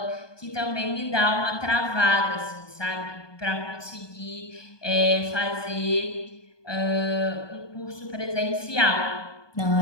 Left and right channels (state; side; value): late; right; 1.2 ms